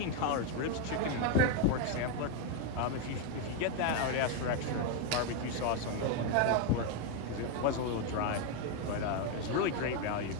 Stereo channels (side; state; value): both; different; correlation 0.01